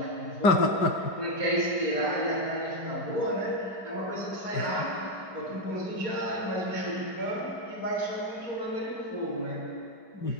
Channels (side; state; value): right; late; 5.1 ms